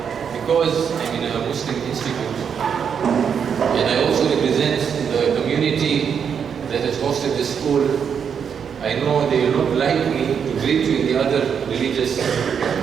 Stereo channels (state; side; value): quieter; left; 7.2 dB